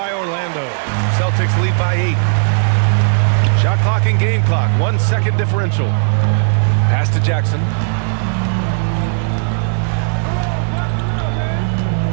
Orlando. Celtics lead by 8. Shot clock and game clock. 1 second differential. Pass to Jackson.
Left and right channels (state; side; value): silent; left; digital silence